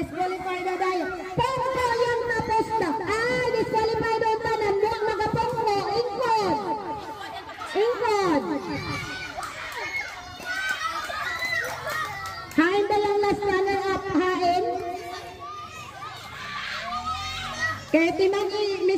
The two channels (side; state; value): both; identical; correlation 1.00